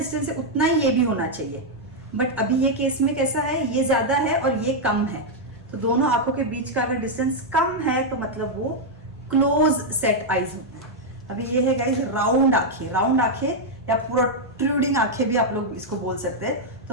है उतना ही ये भी होना चाहिए। बट अभी ये केस में कैसा है? ये ज्यादा है और ये कम है। तो दोनों आंखों के बीच का अगर डिस्टेंस कम है तो मतलब वो क्लोज सेट आईज होता है। अभी ये है गाइस राउंड आंखें। राउंड आंखें या प्रोट्रूडिंग आंखें भी आप लोग इसको बोल सकते हैं।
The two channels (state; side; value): normal; both; correlation -0.02